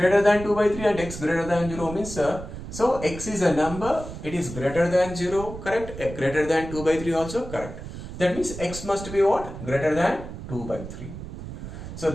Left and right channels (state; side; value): noise; right; rumble, 10 dB below the sound